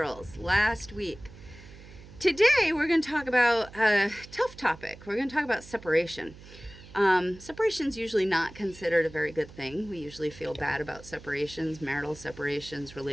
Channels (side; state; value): right; noise; hum, 18 dB below the sound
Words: last week. Today, we're going to talk about a tough topic. We're going to talk about separation. Separation is usually not considered a very good thing. We usually feel bad about separations, marital separations,